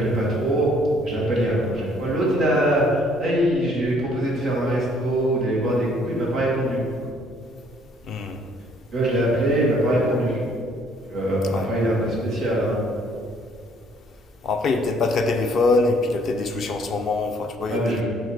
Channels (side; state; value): both; normal; correlation 0.63